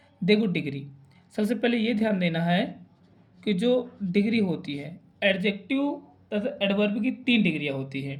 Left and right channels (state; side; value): identical; both; correlation 1.00